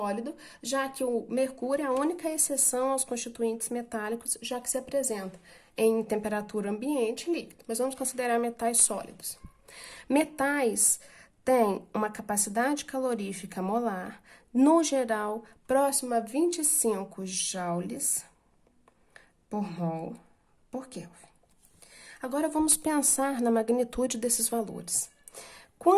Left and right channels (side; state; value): both; identical; correlation 1.00